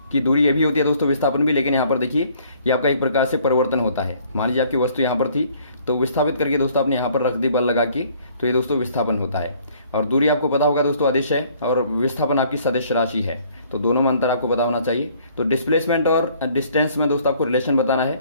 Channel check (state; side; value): inverted; both; correlation -0.59